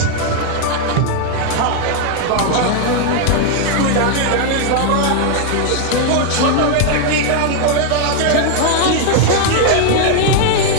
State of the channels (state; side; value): different; both; correlation 0.00